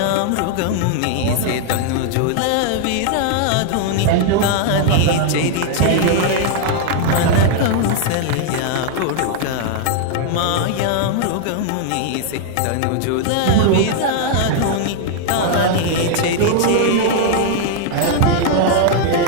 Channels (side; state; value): both; different; correlation 0.00